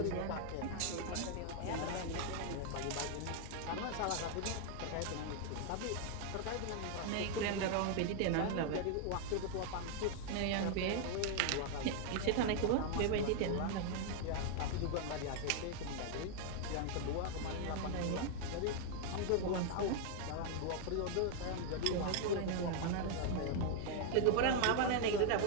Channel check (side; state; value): both; different; correlation 0.00